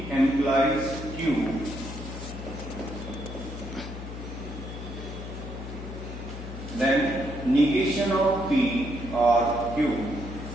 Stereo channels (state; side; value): noise; left; hum, 9 dB below the sound